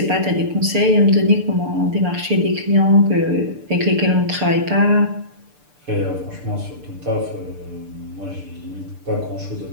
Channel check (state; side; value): late; left; 6.8 ms